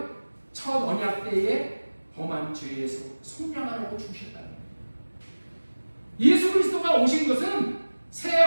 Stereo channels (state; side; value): inverted; both; correlation -1.00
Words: 첫 언약 때에 범한 죄에서 속량하라고 주셨다는 거예요. 예수 그리스도가 오신 것은 새